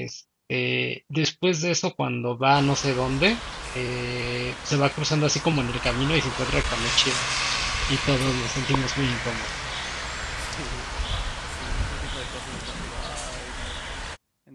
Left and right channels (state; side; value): identical; both; correlation 1.00